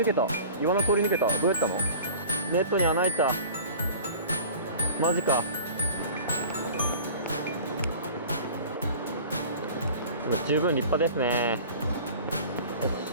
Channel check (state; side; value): inverted; both; correlation -0.43